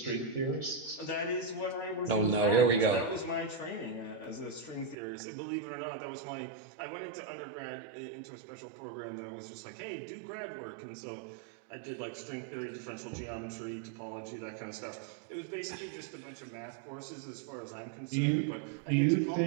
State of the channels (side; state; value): left; drops out; at 5.0 s